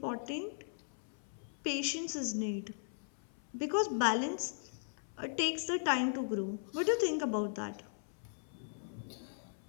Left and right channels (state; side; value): silent; right; 52 dB below the other